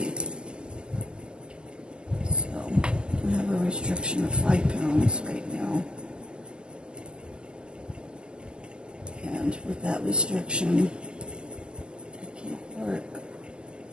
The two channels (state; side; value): late; left; 0.048 ms